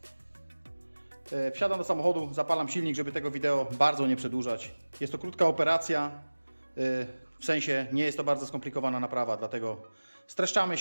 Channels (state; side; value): inverted; both; correlation -1.00